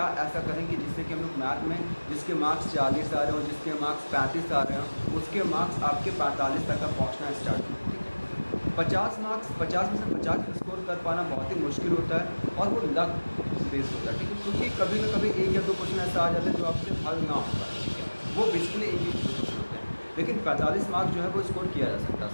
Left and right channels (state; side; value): inverted; both; correlation -1.00